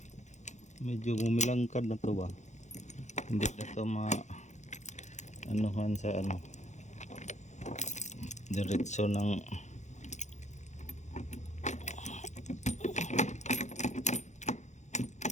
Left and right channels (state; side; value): late; right; 0.34 ms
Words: medyo bumilangkad na to ba hindi na to anuhan sa diretso ng